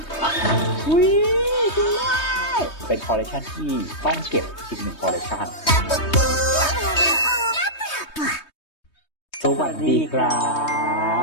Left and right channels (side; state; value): right; late; 3.2 ms